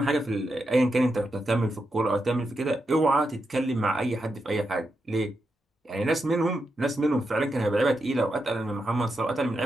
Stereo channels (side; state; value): both; normal; correlation 0.85